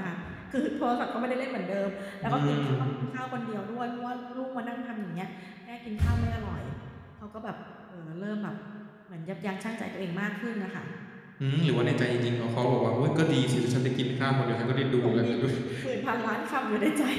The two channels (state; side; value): identical; both; correlation 1.00